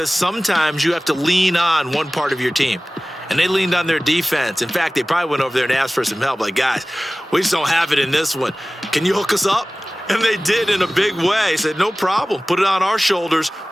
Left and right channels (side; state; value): both; normal; correlation 0.98